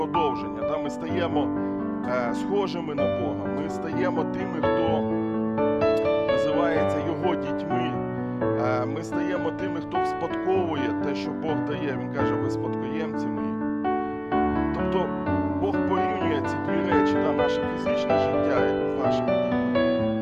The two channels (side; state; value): both; identical; correlation 1.00